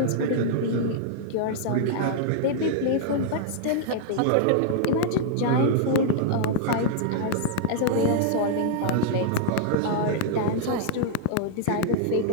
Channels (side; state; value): both; different; correlation -0.01